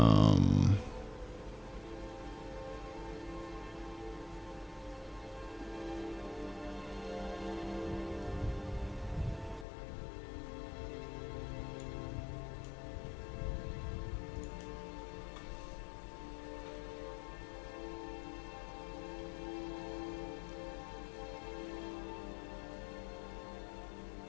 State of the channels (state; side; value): drops out; right; at 9.7 s